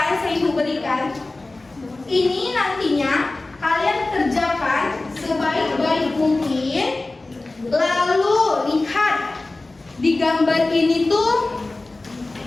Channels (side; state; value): right; quieter; 3.1 dB